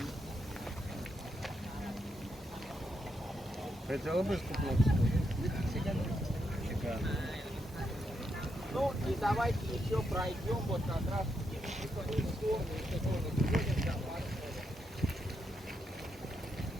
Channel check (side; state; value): both; normal; correlation 0.81